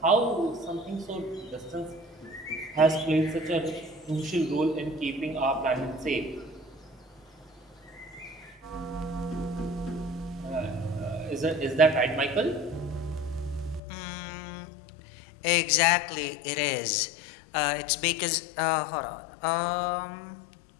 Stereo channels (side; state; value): right; drops out; at 13.8 s